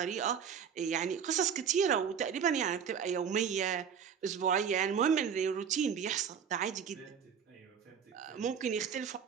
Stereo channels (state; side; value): quieter; left; 7.5 dB